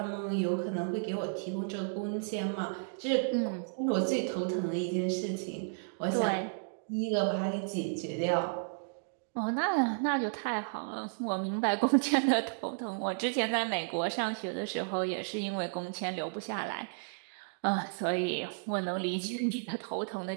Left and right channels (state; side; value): silent; left; digital silence